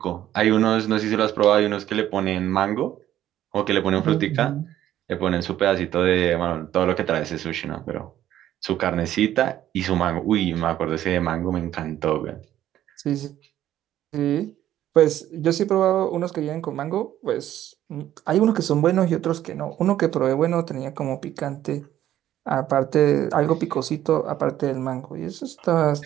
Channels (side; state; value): left; quieter; 12.3 dB